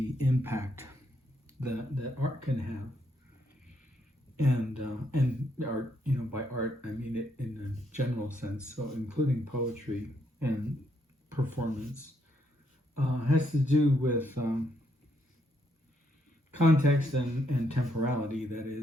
impact that art can have, and art, by art I mean it in a general sense, so including poetry and performance, has to do with context and temporality. That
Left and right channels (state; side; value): normal; both; correlation 0.75